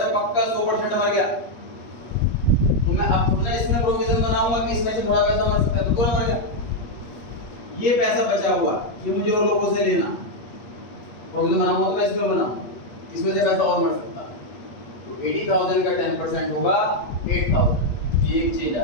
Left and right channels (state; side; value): late; right; 8.4 ms